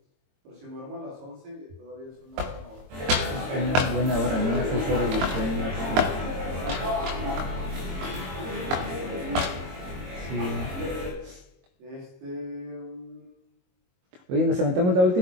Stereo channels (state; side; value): late; left; 22 ms